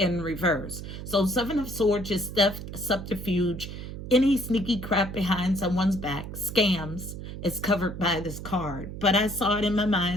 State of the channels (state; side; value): noise; right; hum, 9 dB below the sound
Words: reverse. So Seven of Swords is theft, subterfuge, any sneaky crap behind someone's back, scams, is covered by this card. But I saw it in my